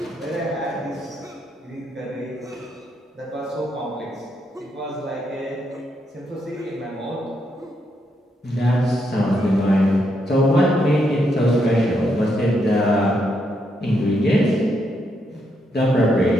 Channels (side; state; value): both; normal; correlation 0.79